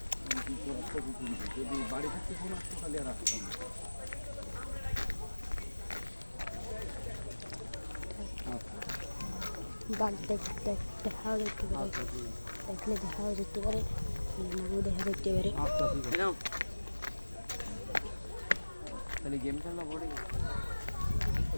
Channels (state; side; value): inverted; both; correlation -1.00